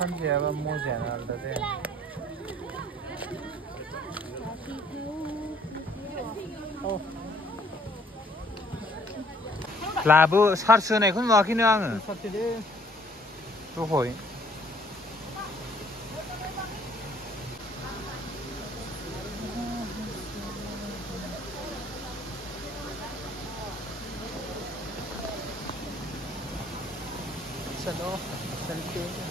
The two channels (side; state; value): both; normal; correlation 0.60